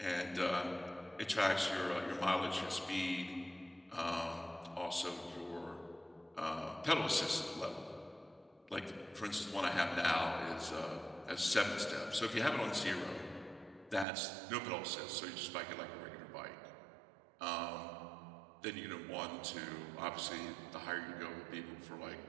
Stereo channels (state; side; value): drops out; left; at 14.1 s